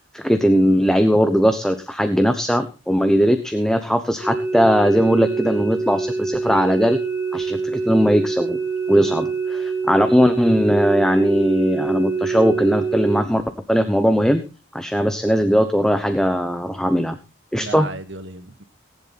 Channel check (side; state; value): both; normal; correlation 0.92